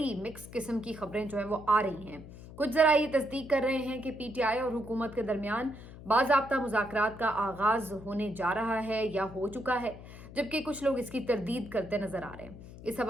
मिक्स किस्म की खबरें जो है वो आ रही हैं। कुछ ज़रा ये तस्दीक कर रहे हैं कि पीटीआई और हुकूमत के दरमियान बाज़ाब्ता मुज़ाकरात का आगाज़ होने जा रहा है या हो चुका है, जबकि कुछ लोग इसकी तरदीद करते नजर आ रहे हैं। इस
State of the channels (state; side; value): noise; left; hum, 15 dB below the sound